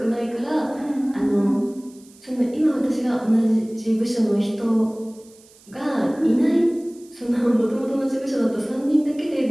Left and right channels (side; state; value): right; noise; hiss, 26 dB below the sound